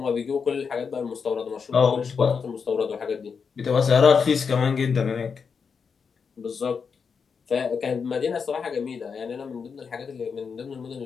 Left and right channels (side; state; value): right; quieter; 5.9 dB